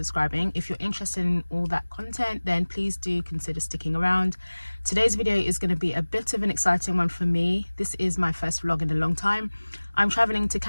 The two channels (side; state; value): both; inverted; correlation -1.00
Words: If you're interested in all that content, then please do consider sticking around. Today's video is going to be a bit of an exciting one for me. This is my first vlog in a long time. I'm traveling to